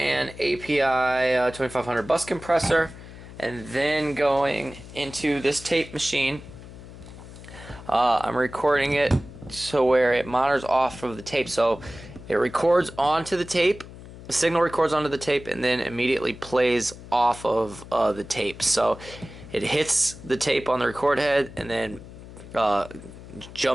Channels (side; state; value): left; noise; hum, 16 dB below the sound